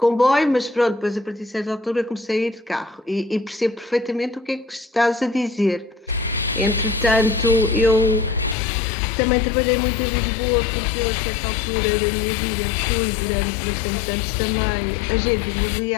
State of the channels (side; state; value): right; drops out; at 8.6 s